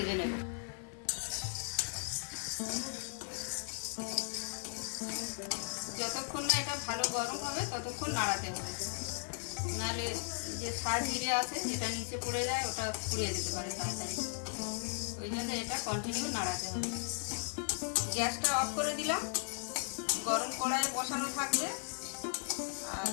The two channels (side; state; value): right; silent; 53 dB below the other